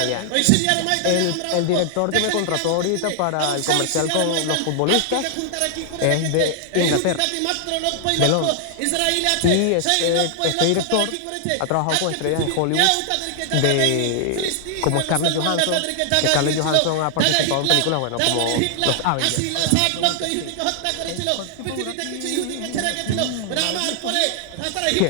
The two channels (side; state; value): both; different; correlation 0.00